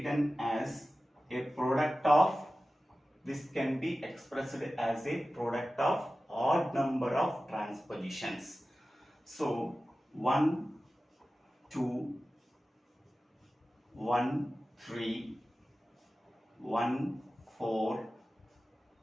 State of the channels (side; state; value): both; normal; correlation 0.95